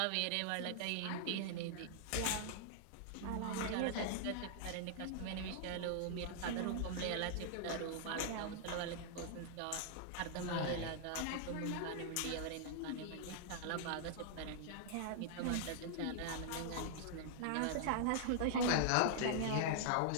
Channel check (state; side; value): different; both; correlation -0.01